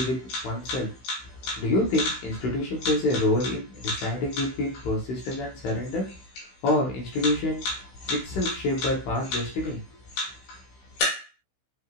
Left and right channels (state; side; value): late; right; 16 ms